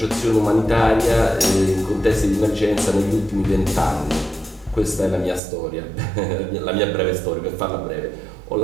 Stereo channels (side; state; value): left; drops out; at 5.4 s